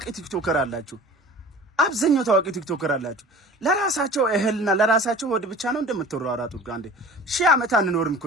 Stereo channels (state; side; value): normal; both; correlation 0.42